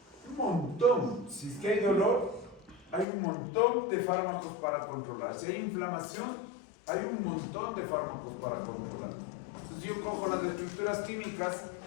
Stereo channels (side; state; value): right; drops out; at 3.1 s